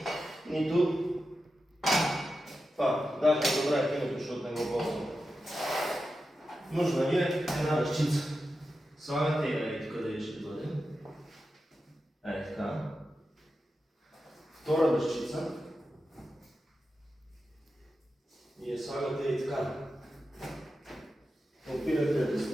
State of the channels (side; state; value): both; normal; correlation 0.91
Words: нито това. Даже добра е киното, защото не го ползвам. Нужна ви е една ръчица. Слагате я и тук да ще бъде. Така. Втора ръчица. И я слагате и така. Опирате до